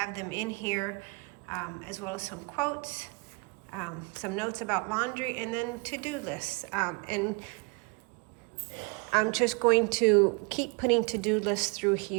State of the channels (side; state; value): left; quieter; 30.9 dB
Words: them in here, as well as some quotes, some notes about laundry, and then to-do lists. And I'm just going to keep putting to-do lists through